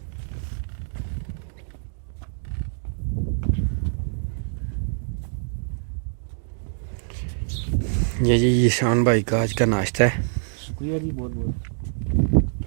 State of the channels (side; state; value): left; silent; digital silence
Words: ये जी ईशान भाई का आज का नाश्ता है शुक्रिया जी, बहुत बहुत।